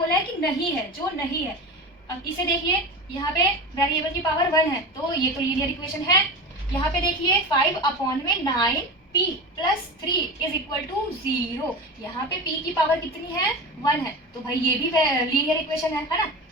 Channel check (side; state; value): both; normal; correlation 0.27